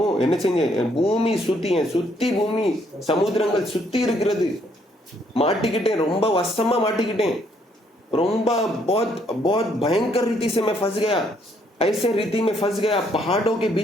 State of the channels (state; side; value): normal; both; correlation 0.69